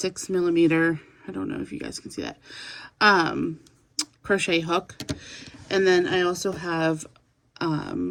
millimeter, I don't know if you guys can see that, crochet hook. And then I also have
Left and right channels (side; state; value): both; identical; correlation 1.00